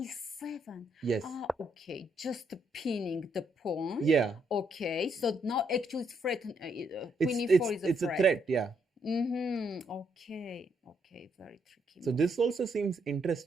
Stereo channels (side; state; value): both; normal; correlation 0.75